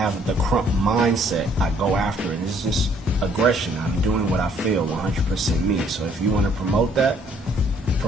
the Krump mindset. I go after it. It's just aggression. I'm doing what I feel, 100% me. So if you want to promote that,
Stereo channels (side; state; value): both; normal; correlation 0.63